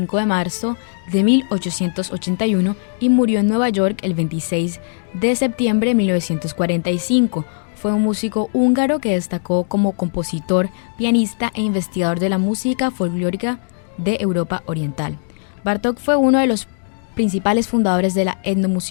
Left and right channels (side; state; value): right; silent; digital silence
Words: de marzo de 1881 y murió en Nueva York el 26 de septiembre de 1945. Fue un músico húngaro que destacó como compositor, pianista e investigador de la música folclórica de Europa Oriental. Bartók fue uno de los principales fundadores de la